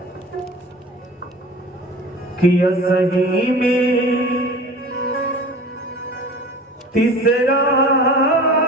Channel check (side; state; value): both; normal; correlation 0.39